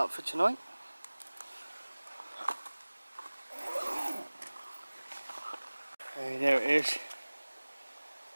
for tonight. And there it is.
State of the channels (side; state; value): both; inverted; correlation -1.00